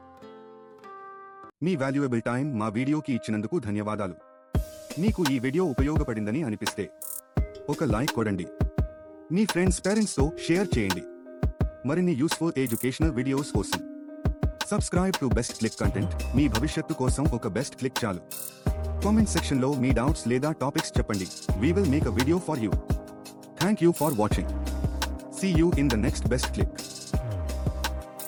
Me valuable time మా వీడియోకి ఇచ్చినందుకు ధన్యవాదాలు. మీకు ఈ వీడియో ఉపయోగపడిందని అనిపిస్తే ఒక లైక్ కొడండి. మీ ఫ్రెండ్స్ పేరెంట్స్తో షేర్ చేయండి. మరిన్ని యూస్ఫుల్ ఎడ్యుకేషనల్ వీడియోస్ కోసం subscribe to best click content. మీ భవిష్యత్తు కోసం ఒక బెస్ట్ క్లిక్ చాలు. కామెంట్ సెక్షన్లో మీ డౌట్స్ లేదా టాపిక్స్ చెప్పండి. We will make a video for you. Thank you for watching. See you in the next best click.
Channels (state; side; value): identical; both; correlation 1.00